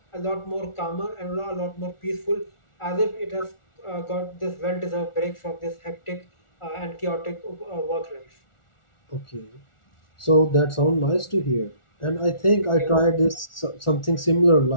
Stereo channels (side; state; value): right; late; 1.4 ms